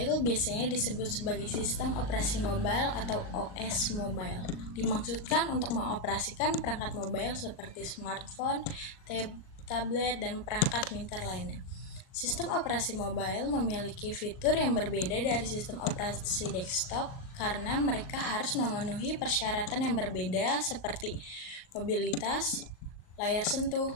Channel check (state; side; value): late; right; 39 ms